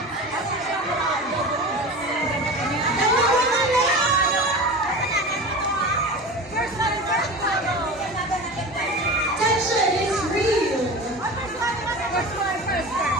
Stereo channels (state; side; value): normal; both; correlation 0.31